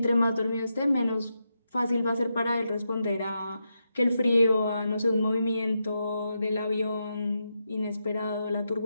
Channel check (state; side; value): inverted; both; correlation -0.85